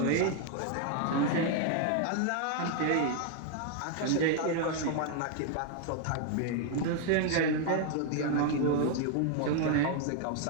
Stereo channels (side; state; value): both; different; correlation 0.00